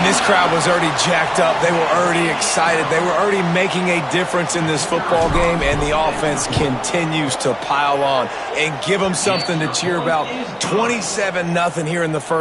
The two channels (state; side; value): identical; both; correlation 1.00